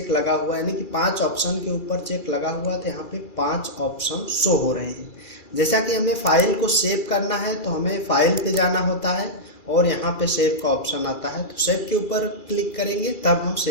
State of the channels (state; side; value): late; right; 2.3 ms